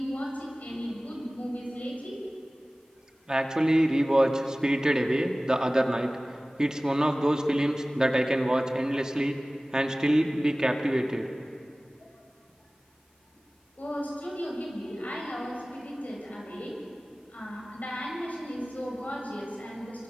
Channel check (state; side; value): normal; both; correlation 0.98